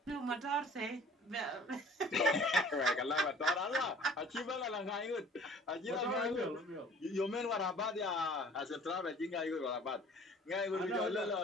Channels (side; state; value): both; normal; correlation 0.50